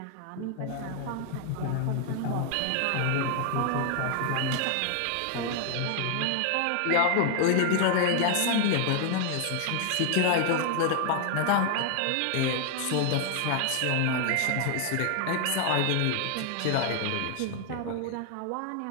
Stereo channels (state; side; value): different; both; correlation 0.00